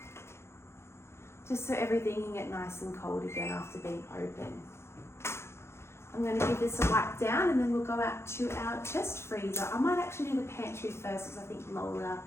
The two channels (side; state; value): right; late; 0.13 ms